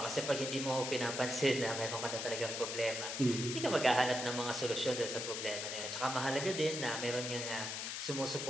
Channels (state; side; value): noise; left; hiss, 4 dB below the sound